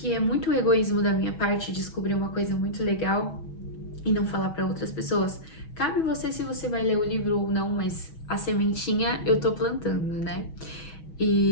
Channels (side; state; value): right; late; 6.3 ms